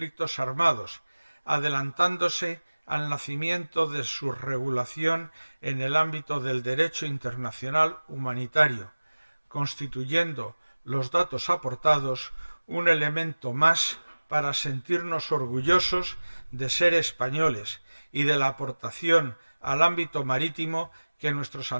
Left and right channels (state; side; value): inverted; both; correlation -1.00